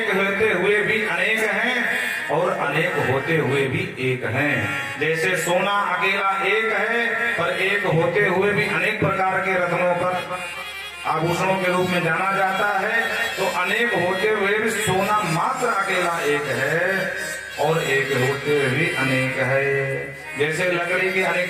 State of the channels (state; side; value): identical; both; correlation 1.00